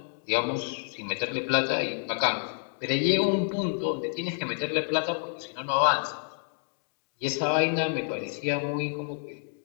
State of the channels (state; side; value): silent; right; digital silence